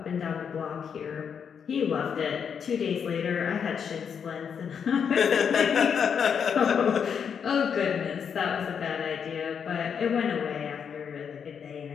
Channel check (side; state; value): right; quieter; 7.2 dB